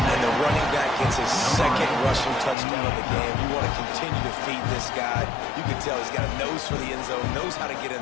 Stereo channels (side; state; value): right; drops out; at 2.6 s